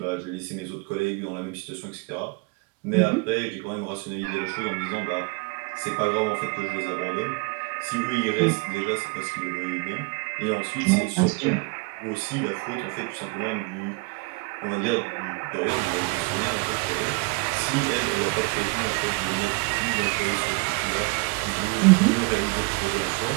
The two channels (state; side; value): quieter; left; 28.2 dB